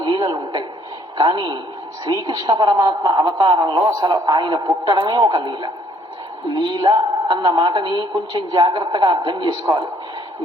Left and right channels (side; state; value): both; normal; correlation 0.63